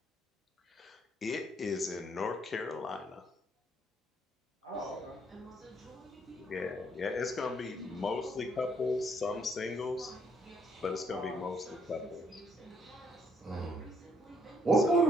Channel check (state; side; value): normal; both; correlation 0.68